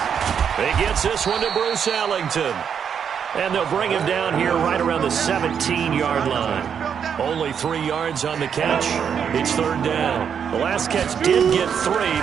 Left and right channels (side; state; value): left; quieter; 7.5 dB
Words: He gets this one to Bruce Ellington. And they'll bring him down here right around the 17-yard line. Only 3 yards on the catch. It's third down. The last catch did get 3,